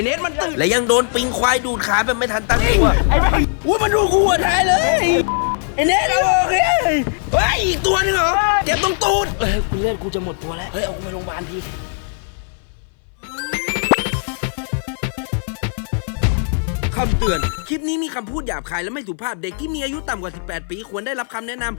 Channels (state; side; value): silent; right; 60 dB below the other